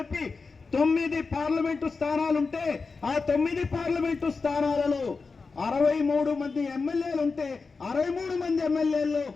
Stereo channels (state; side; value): quieter; right; 4.4 dB